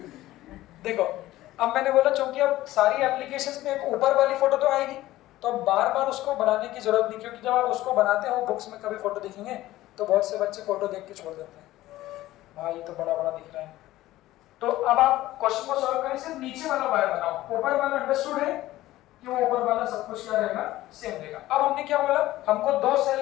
देखो अब मैंने बोला चूंकि अब सारी एप्लीकेशंस में एक ऊपर वाली फोटो तो आएगी, तो अब बार बार उसको बनाने की जरूरत नहीं, क्योंकि जब आप उसको बनाते हो बुक्स में कभी फोटो दिखेंगे तो बहुत से बच्चे फोटो देख के छोड़ देते हैं, भाई ये तो बड़ा बड़ा दिख रहा है। तो अब आप क्वेश्चन को सॉल्व करें, सिर्फ नीचे वाला वायर बनाओ, ऊपर वाला अंडरस्टूड है कि वो ऊपर वाला सब कुछ क्या रहेगा, सेम रहेगा। अब हमने क्या बोला, हमको 2 सेल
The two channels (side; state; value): right; quieter; 16.0 dB